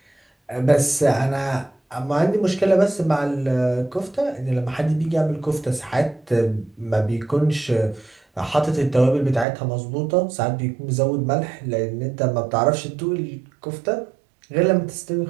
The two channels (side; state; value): left; drops out; at 9.5 s